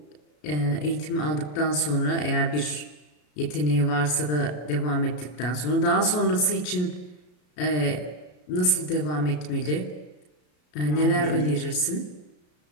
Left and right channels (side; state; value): right; late; 33 ms